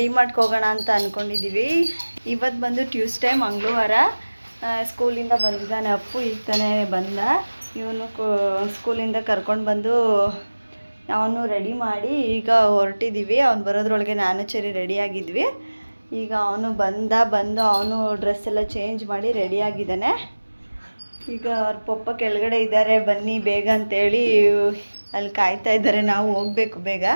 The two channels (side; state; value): both; inverted; correlation -1.00